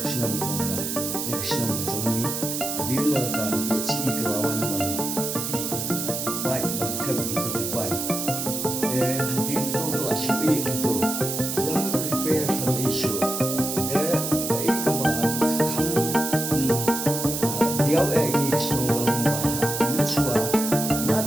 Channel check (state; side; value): noise; right; hiss, 3 dB below the sound